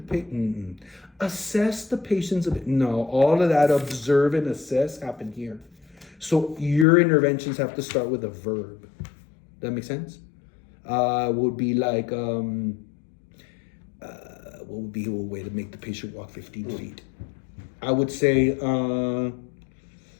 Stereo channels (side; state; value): right; drops out; at 6.9 s